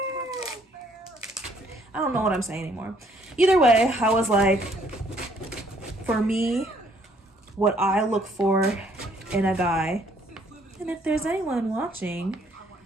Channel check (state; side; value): normal; both; correlation 0.64